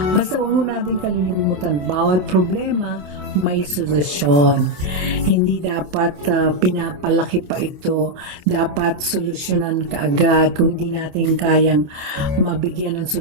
Basta wag natin kalilimutan, bawat problema may solusyon. Hindi dapat pinapalaki pa ito. Dapat solusyonan kaagad. Kung hindi natin kayang mabigyan ng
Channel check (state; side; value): late; left; 27 ms